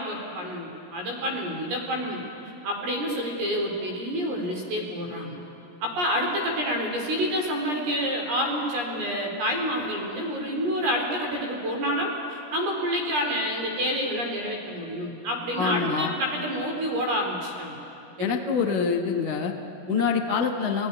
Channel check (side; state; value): left; late; 17 ms